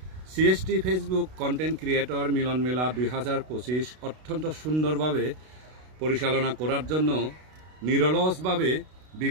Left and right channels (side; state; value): left; late; 32 ms